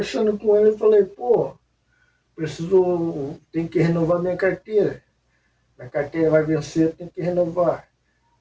com ele, eu falei, pô, tem que renovar minha carteira. Minha carteira vai vencer, tem que renovar.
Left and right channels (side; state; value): both; identical; correlation 1.00